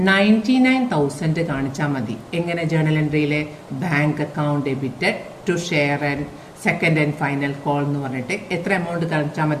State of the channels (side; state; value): both; identical; correlation 1.00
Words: 99,000 കാണിച്ചാൽ മതി. എങ്ങനെ? ജേർണൽ എൻട്രിയിലെ bank account debited to share and second and final call എന്ന് പറഞ്ഞിട്ട് എത്ര എമൗണ്ട് കാണിച്ചാൽ